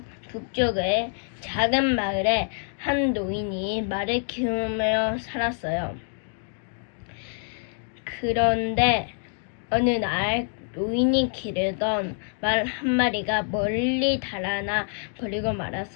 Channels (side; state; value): right; silent; 61 dB below the other